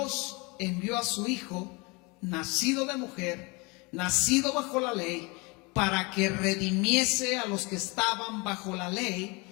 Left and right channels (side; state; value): right; quieter; 27.8 dB